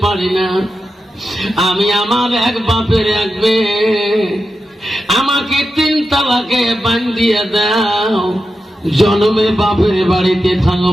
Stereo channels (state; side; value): normal; both; correlation 0.90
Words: পারি না। আমি আমার এক বাপের এক মেয়ে, আমাকে 3 তালাকে বান্ধিয়ে দাও, জন্মে বাপের বাড়িতে